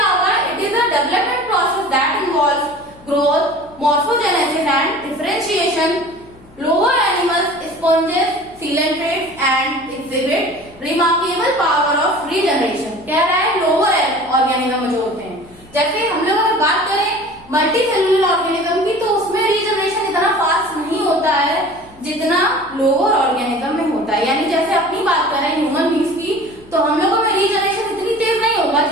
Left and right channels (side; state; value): left; noise; hum, 25 dB below the sound